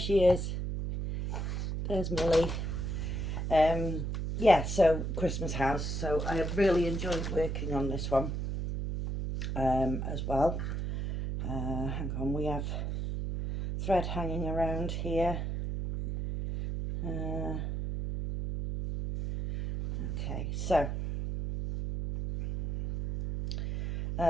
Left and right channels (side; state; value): right; noise; hum, 2 dB below the sound